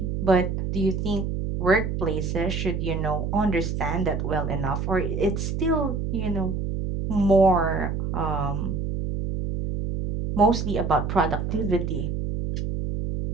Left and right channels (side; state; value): right; noise; hum, 2 dB below the sound